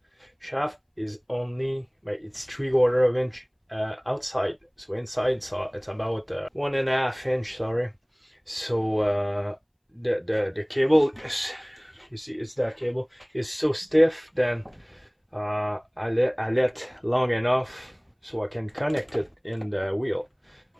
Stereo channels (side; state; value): both; identical; correlation 1.00